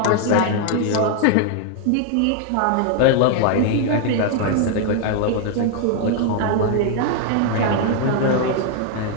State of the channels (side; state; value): both; different; correlation 0.00